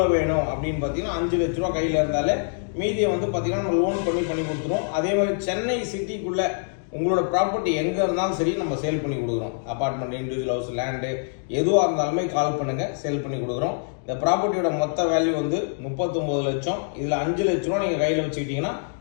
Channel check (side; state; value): right; silent; digital silence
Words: வேணும் அப்படின்னு பார்த்தீங்கன்னா 5 லட்ச ரூபா கையில் இருந்தாலே மீதியை பார்த்தீங்கன்னா நம்ம லோன் பண்ணி கொடுத்துருவோம். அதே மாதிரி சென்னை சிட்டிக்குள்ளே உங்களோட ப்ராப்பர்ட்டி எங்கே இருந்தாலும் சரி நம்ம சேல் பண்ணி கொடுக்குறோம். அப்பார்ட்மெண்ட், இண்டிவிஜுவல் ஹவுஸ், லேண்டு எதுவாக இருந்தாலுமே கால் பண்ணுங்கள், சேல் பண்ணி கொடுக்குறோம். இந்த ப்ராப்பர்ட்டியோட மொத்த வேல்யூ 39 லட்சம். இதில் 5 லட்ச ரூபா நீங்கள் கையில் வச்சுக்கிட்டிங்கன்னா